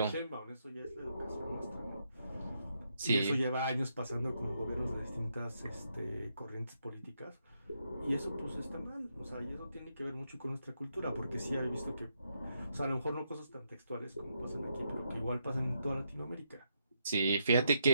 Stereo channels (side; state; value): both; inverted; correlation -0.80